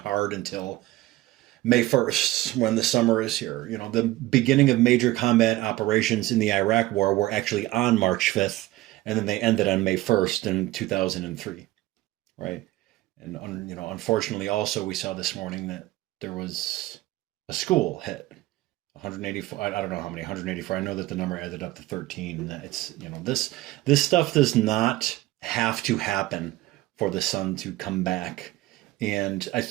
until May 1st, when the summer is here. The beginning of major combat operations in the Iraq War were actually on March 5th, and then they ended on May 1st in 2003, right? And, unfortunately, also we saw this morning that there was a school hit. 184, I don't know how many, 184. I know that the number added up to 13. And it's, this stuff does not have to happen for the sun to come back. And I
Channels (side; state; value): left; quieter; 17.3 dB